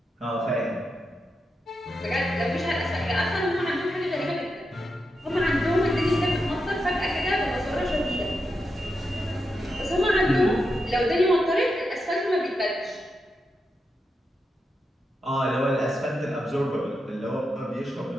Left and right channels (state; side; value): normal; both; correlation 0.86